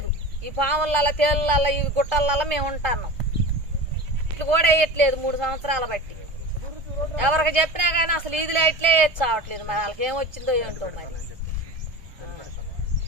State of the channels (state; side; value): late; left; 1.2 ms